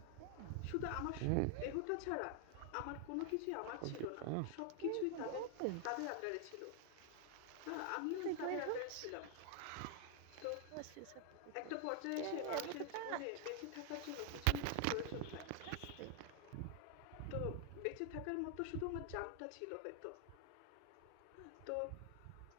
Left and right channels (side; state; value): both; different; correlation 0.00